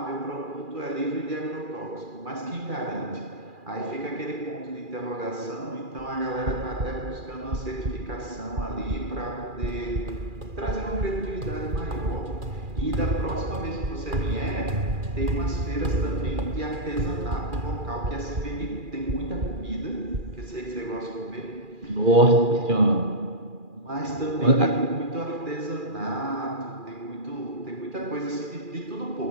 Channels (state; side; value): late; left; 2.4 ms